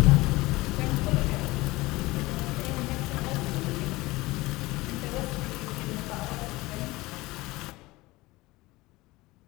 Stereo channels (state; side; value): quieter; right; 20.5 dB